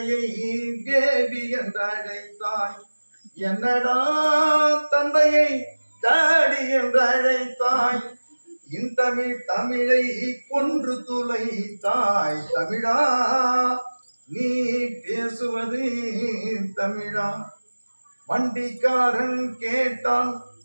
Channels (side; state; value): both; inverted; correlation -1.00